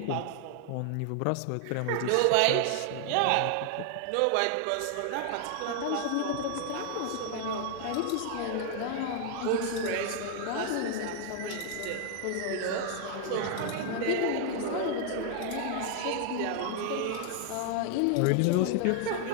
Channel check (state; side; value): different; both; correlation 0.00